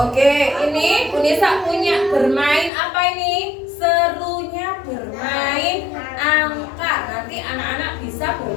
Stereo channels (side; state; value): right; drops out; at 2.7 s